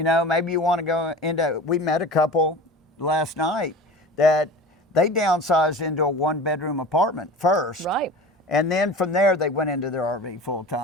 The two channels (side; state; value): both; normal; correlation 0.36